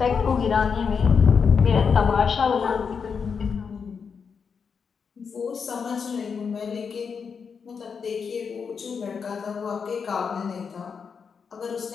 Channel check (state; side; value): quieter; right; 6.1 dB